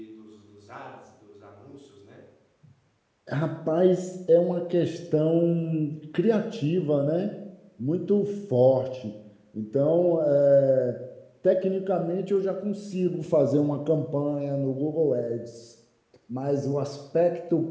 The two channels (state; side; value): identical; both; correlation 1.00